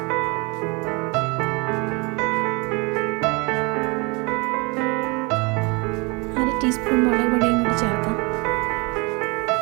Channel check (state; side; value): quieter; left; 28.6 dB